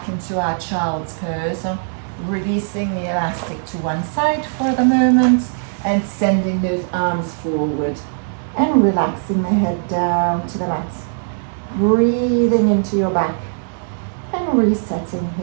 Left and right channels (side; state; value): left; silent; digital silence